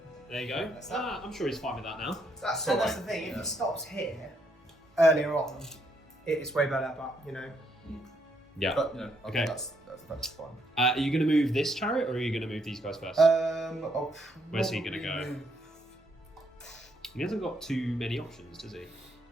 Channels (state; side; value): normal; both; correlation 0.74